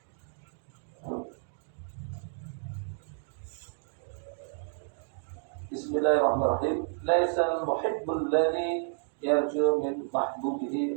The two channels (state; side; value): silent; left; digital silence